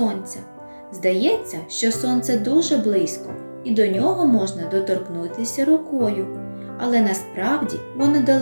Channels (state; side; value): inverted; both; correlation -1.00